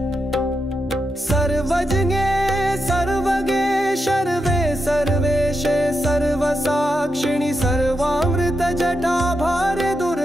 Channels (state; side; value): normal; both; correlation 0.86